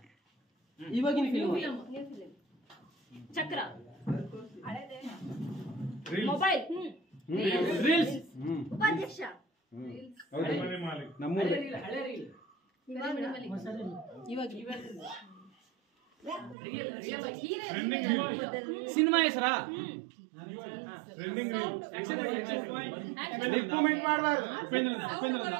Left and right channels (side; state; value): left; drops out; at 16.6 s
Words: ಇವಾಗಿನ ಫಿಲ್ಮ್ ಚಕ್ರ ಮೊಬೈಲ್ ರೀಲ್ಸ್. ಉಪಾಧ್ಯಕ್ಷ ನಮ್ಮೂರು ಹಳೆ ರೀಲ್. ಸಿನಿಮಾ ಹೆಸರಾ? ರಿಕಮೆಂಡ್ ಮಾಡಬಾರ್ದು